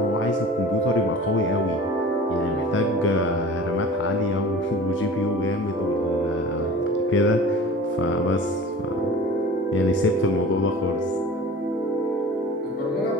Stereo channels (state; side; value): normal; both; correlation 0.40